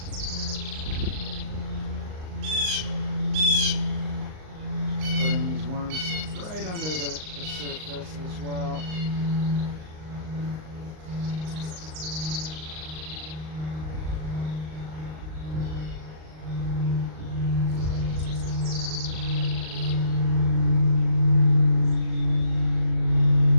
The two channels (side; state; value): left; late; 38 ms